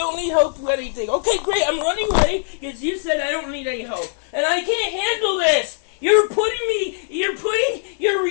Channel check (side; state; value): right; silent; 58 dB below the other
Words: need help with anything. Okay, great. I'm running away because you said I don't need any help. And I can't handle this. You're abusing